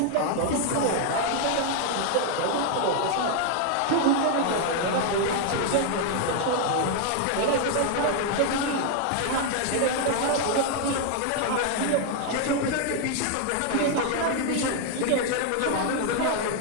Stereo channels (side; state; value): both; different; correlation 0.00